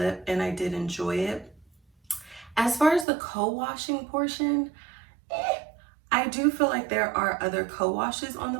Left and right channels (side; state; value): left; drops out; at 3.1 s